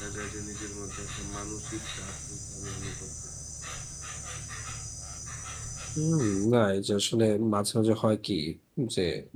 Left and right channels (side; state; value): both; identical; correlation 1.00